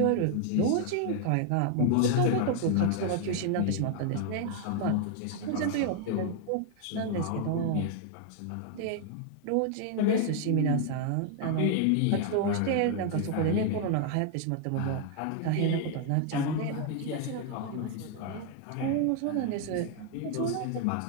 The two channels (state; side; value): different; both; correlation 0.00